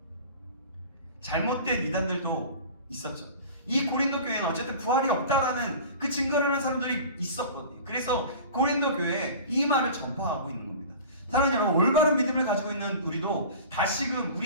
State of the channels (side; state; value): both; inverted; correlation -0.38